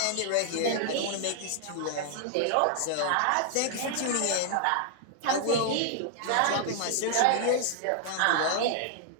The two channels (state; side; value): different; both; correlation 0.00